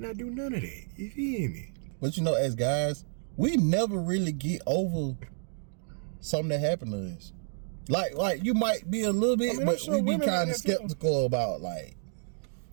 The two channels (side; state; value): left; silent; digital silence